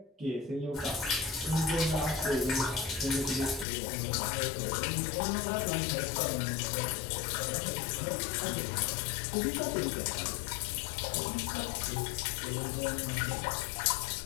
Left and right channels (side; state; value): right; drops out; at 3.7 s